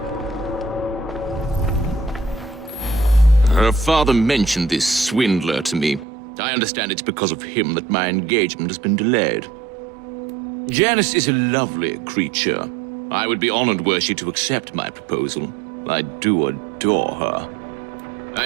Her father mentioned this swindler to me. I understand it's because of him that my engagement has been delayed. Janice is a lovely creature. I would be honored were she to accept my proposal. I do adore her. I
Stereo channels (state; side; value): drops out; left; at 6.1 s